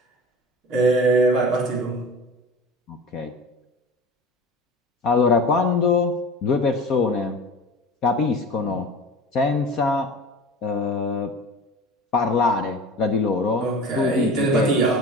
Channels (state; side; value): normal; both; correlation 0.37